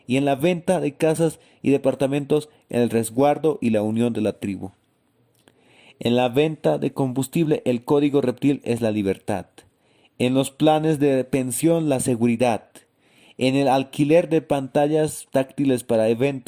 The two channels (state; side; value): identical; both; correlation 1.00